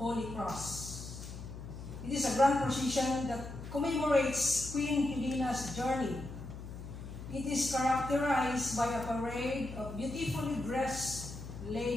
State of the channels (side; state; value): left; noise; hum, 11 dB below the sound